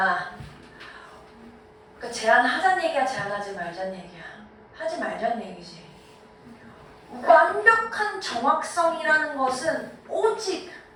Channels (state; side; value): identical; both; correlation 1.00